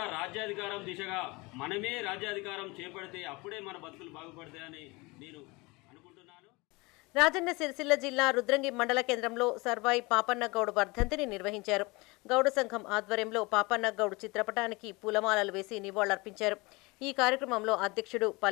రాజ్యాధికారం దిశగా మనమే రాజ్యాధికారం చేపడితే అప్పుడే మన బతుకులు బాగుపడతాయని నేను అనుకుంటున్నాను. రాజన్న సిరిసిల్ల జిల్లా రుద్రంగి మండల కేంద్రంలో సర్వాయి పాపన్న గౌడ్ వర్ధంతిని నిర్వహించారు. గౌడ సంఘం ఆధ్వర్యంలో పాపన్న గౌడ్ చిత్రపటానికి పూలమాలలు వేసి నివాళులర్పించారు. ఈ కార్యక్రమంలో అధ్యక్షుడు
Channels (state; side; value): quieter; right; 25.0 dB